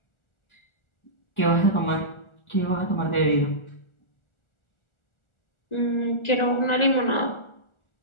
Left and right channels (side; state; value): right; late; 1.4 ms